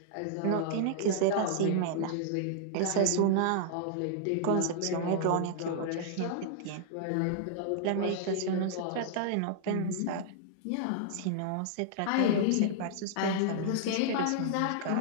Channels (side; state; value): both; different; correlation -0.01